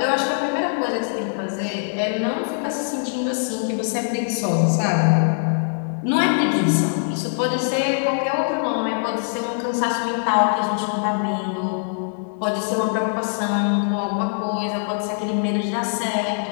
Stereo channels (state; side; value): silent; right; digital silence